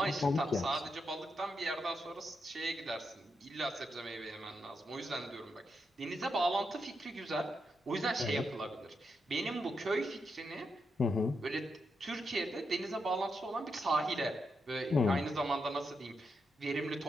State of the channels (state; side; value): normal; both; correlation 0.84